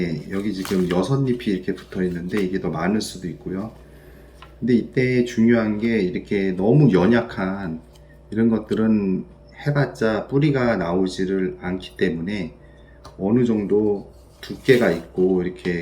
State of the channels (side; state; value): both; identical; correlation 1.00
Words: 여기 지금 6잎이 이렇게 붙어 있는데 이게 더 많을 수도 있고요. 근데 이때 중요한 게 이렇게 너무 연약한 이런 것들은 해봤자 뿌리가 나오지를 않기 때문에 어느 정도 두께가 있고